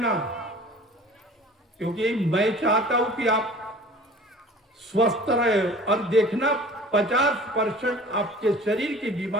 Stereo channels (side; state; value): both; normal; correlation 0.44